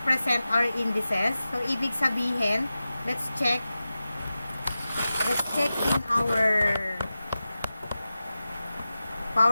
our indices. So, ibig sabihin, let's check in our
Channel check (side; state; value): both; inverted; correlation -0.94